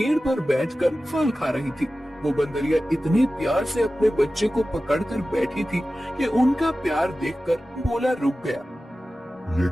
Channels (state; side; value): normal; both; correlation 0.95